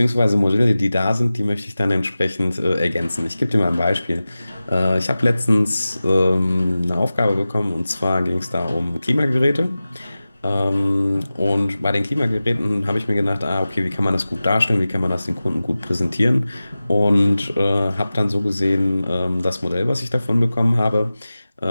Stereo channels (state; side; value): inverted; both; correlation -0.96